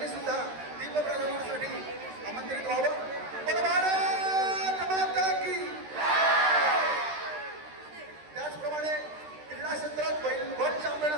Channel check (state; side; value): late; left; 13 ms